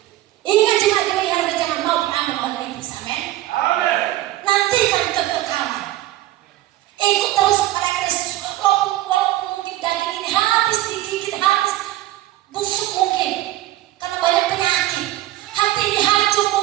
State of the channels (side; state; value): left; quieter; 15.2 dB